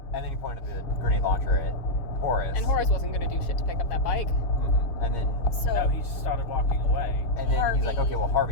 and then he pointed the grenade launcher at Horace. And Horace wasn't going to do shit to pick up that bike. Mhm. And then So No, he just started walking away. he's like, Harvey. "Okay, well,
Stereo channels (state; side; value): late; right; 6.9 ms